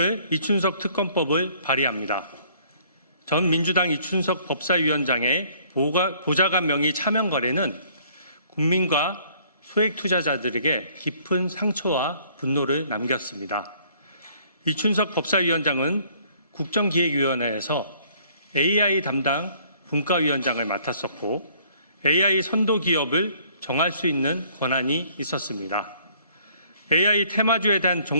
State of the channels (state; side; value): inverted; both; correlation -0.60